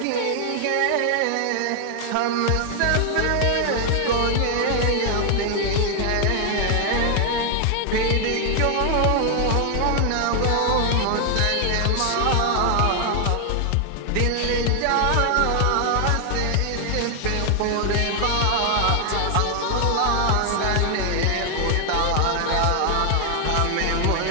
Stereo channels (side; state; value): both; different; correlation 0.00